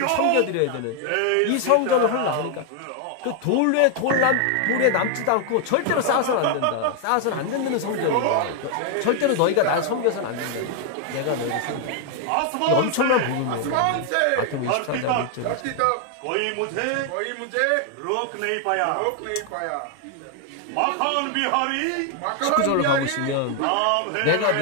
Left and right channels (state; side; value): different; both; correlation 0.00